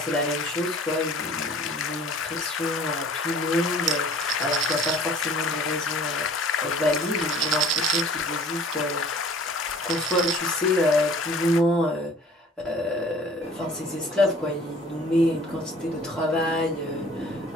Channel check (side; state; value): both; normal; correlation 0.49